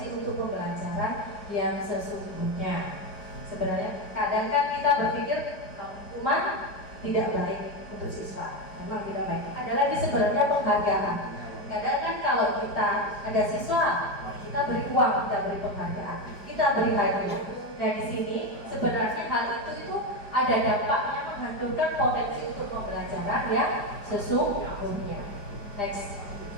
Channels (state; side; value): late; right; 4.9 ms